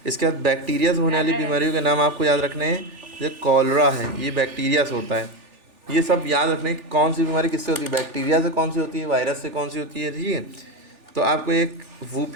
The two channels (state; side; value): late; left; 3.4 ms